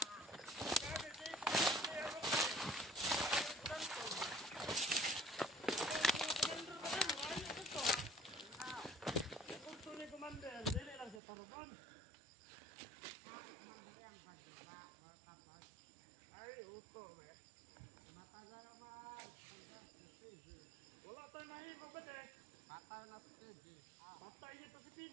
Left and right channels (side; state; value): left; drops out; at 11.2 s